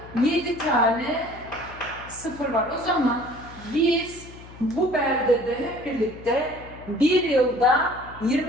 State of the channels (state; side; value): noise; left; hum, 18 dB below the sound